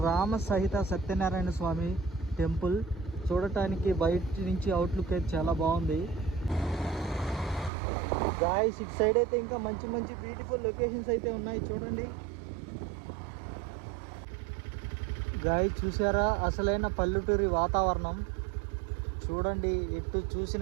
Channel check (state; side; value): drops out; left; at 7.7 s